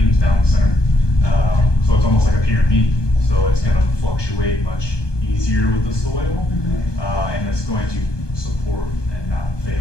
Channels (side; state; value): right; late; 1.2 ms